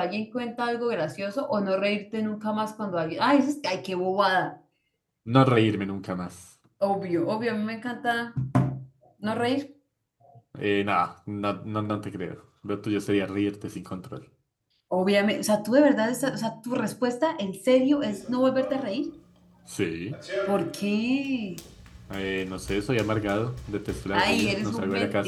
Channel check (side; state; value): both; identical; correlation 1.00